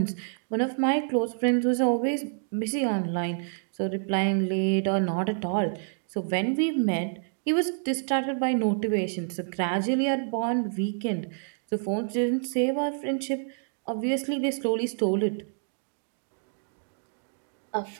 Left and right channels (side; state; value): left; silent; 59 dB below the other